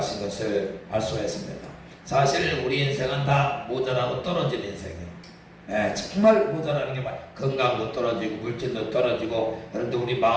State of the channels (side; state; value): both; identical; correlation 1.00